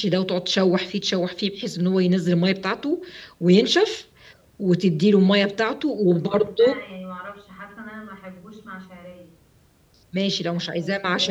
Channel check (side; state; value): both; identical; correlation 1.00